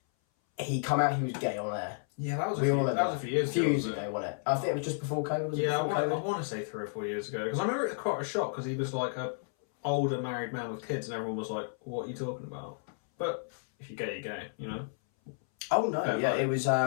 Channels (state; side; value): silent; right; 57 dB below the other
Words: come out. He was gay on air. Yeah, that was a few years ago. Wasn't it? I think it was just before COVID. I want to say 3 or 4 years ago, because I remember it was quite a shock because he was like a older married man with kids, and everyone was like, "What are you talking about?" But if you're gay, you're gay, you know. Oh no! It was